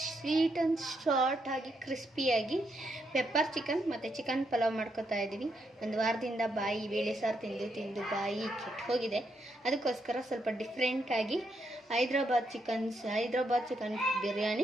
ಸ್ವೀಟ್ ಆ್ಯಂಡ್ ಶಾರ್ಟ್ ಆಗಿ ಕ್ರಿಸ್ಪಿಯಾಗಿ ಪೆಪ್ಪರ್ ಚಿಕನ್ ಮತ್ತು ಚಿಕನ್ ಪಲಾವ್ ಮಾಡ್ಕೊತಾ ಇದ್ದೀವಿ. ಒಂದು ವಾರದಿಂದ ಬೇಳೆ ಸಾರು ತಿಂದು ಬಾಯಿ ಕೆಟ್ಟು ಹೋಗಿದೆ. ಅದಕ್ಕೋಸ್ಕರ ಸ್ವಲ್ಪ ಡಿಫ್ರೆಂಟಾಗಿ ಹೈದ್ರಾಬಾದ್ ಚಿಕನ್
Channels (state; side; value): normal; both; correlation 0.79